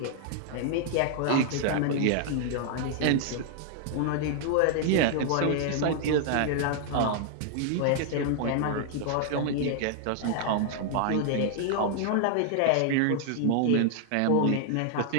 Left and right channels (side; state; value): both; different; correlation 0.00